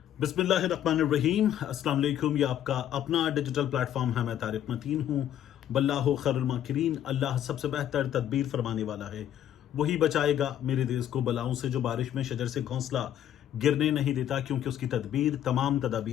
बिस्मिल्लाहिर्रहमानिर्रहीम। अस्सलाम वालेकुम। ये आपका अपना डिजिटल प्लेटफॉर्म है। मैं तारिक मतीन हूँ। वल्लाहु खैरुल माकिरीन। अल्लाह सबसे बेहतर तदबीर फरमाने वाला है। वही बचाएगा मेरे देश को बलाओं से, जो बारिश में शजर से घोंसला गिरने नहीं देता, क्योंकि उसकी तदबीर तमाम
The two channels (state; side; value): quieter; right; 10.8 dB